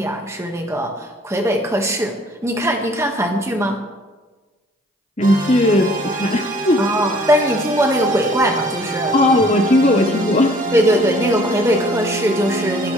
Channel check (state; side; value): normal; both; correlation 0.56